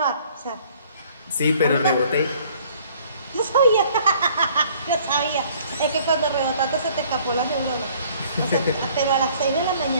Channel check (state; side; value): inverted; both; correlation -0.57